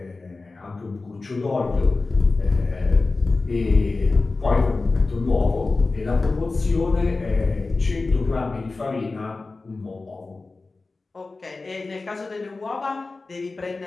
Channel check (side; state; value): right; quieter; 3.6 dB